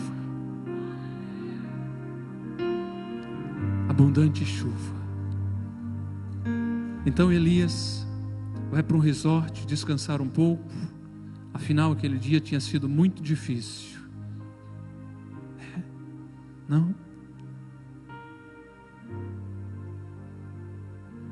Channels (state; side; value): identical; both; correlation 1.00